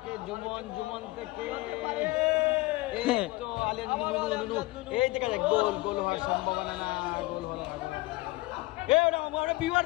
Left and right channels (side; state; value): right; quieter; 21.1 dB